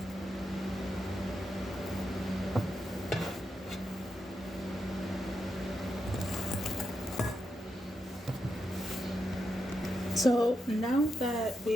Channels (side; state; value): both; normal; correlation 0.85